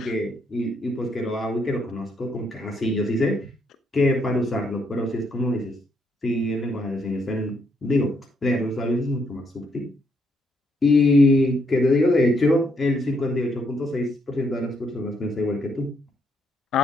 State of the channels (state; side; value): normal; both; correlation 0.74